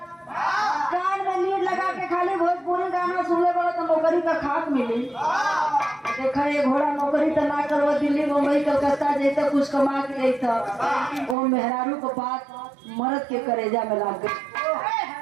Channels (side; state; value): left; drops out; at 11.4 s